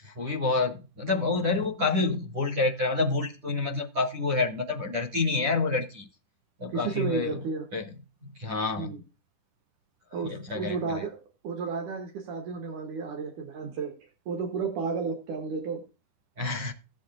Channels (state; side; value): late; left; 10 ms